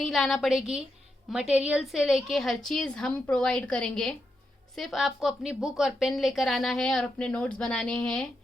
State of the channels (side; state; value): both; normal; correlation 0.84